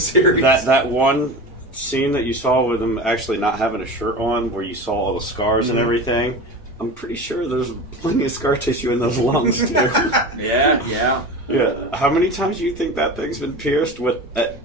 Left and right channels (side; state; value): both; normal; correlation 0.30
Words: that one scene that you saw with him actually not having a shirt on, where you saw all the scars and everything, I'm pretty sure there's plenty of scar tissue in those lungs too. Yeah. Yeah. How many times do you think that thing's been pierced with at